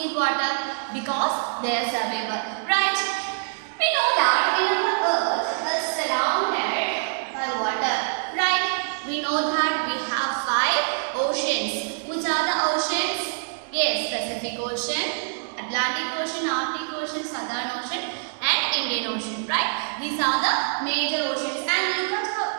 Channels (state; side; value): silent; left; digital silence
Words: water? Because they are survival, right? We know that in our earth is surrounded by water, right? We know that we have 5 oceans. Which are the oceans? Yes, Pacific Ocean, Atlantic Ocean, Arctic Ocean, Southern Ocean and Indian Ocean, right? These are the major oceans. And look at